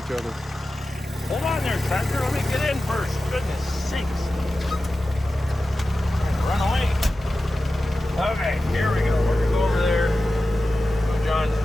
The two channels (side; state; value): both; normal; correlation 0.94